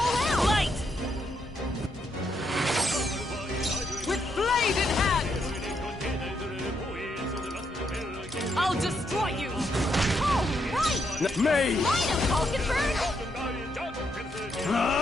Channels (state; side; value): normal; both; correlation 0.78